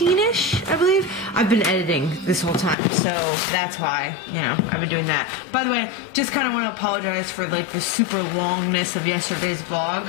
I believe. I've been editing this whole time, so that's why, you know, I've been doing that. By the way, just kind of want to apologize for like the super longness of yesterday's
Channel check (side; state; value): right; drops out; at 2.8 s